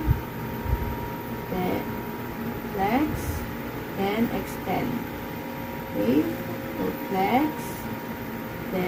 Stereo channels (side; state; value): both; identical; correlation 1.00